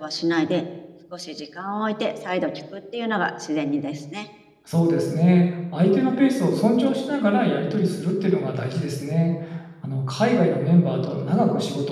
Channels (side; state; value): both; identical; correlation 1.00